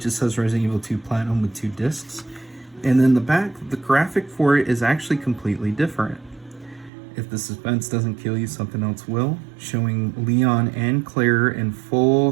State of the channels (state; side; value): drops out; left; at 6.9 s